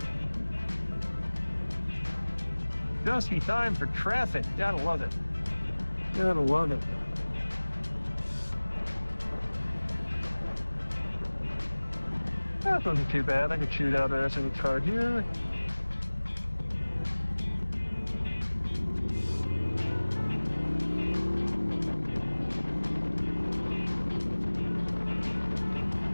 Just in time for traffic. Gotta love it. Gotta love it. That wasn't too bad. I could shoot out there in the car here.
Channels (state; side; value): inverted; both; correlation -1.00